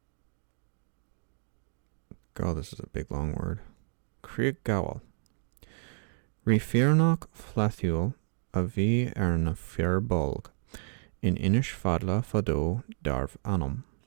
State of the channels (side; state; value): left; silent; 57 dB below the other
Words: God, this is a big long word. Craig Gowell. Rifirnach flathuel a bhí na firbulg in Inish fadla fado darv anum.